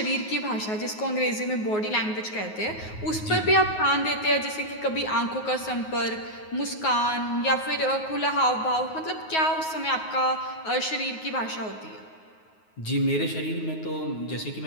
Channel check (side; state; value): right; late; 9.4 ms